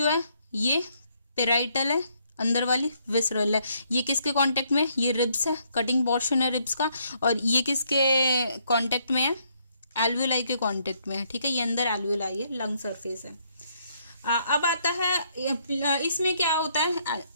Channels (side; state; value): both; inverted; correlation -0.71